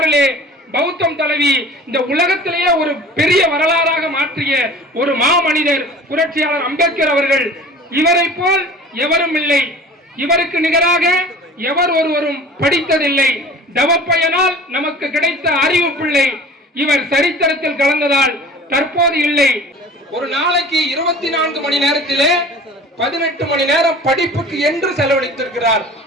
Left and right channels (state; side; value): normal; both; correlation 0.42